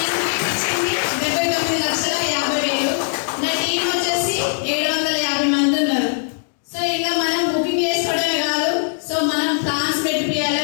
ఇచ్చింది 79,50,000. నా టీం వచ్చేసి 750 మంది ఉన్నారు. సో ఇంకా మనం బుకింగ్ చేసుకోవడమే కాదు, సో మనం ప్లాన్స్ పెట్టియాలి,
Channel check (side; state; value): right; silent; digital silence